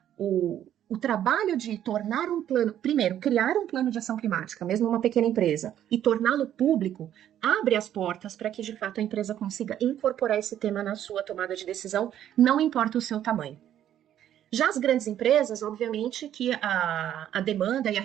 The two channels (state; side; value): quieter; left; 11.0 dB